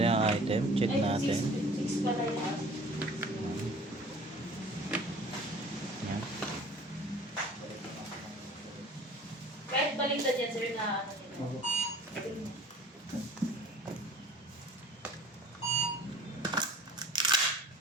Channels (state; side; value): normal; both; correlation 0.47